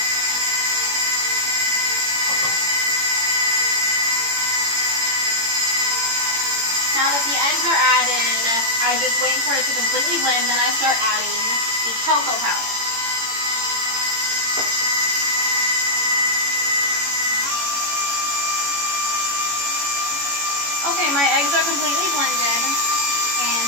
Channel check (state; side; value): late; left; 18 ms